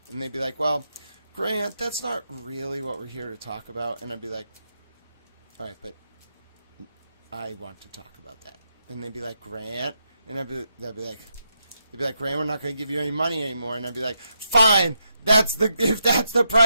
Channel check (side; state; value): both; inverted; correlation -0.83